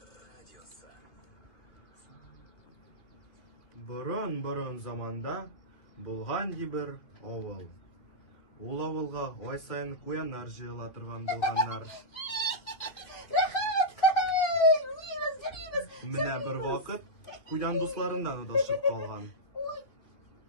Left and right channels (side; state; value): right; late; 2.7 ms